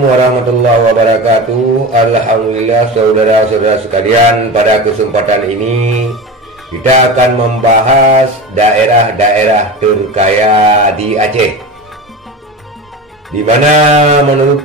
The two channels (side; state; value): both; normal; correlation 0.28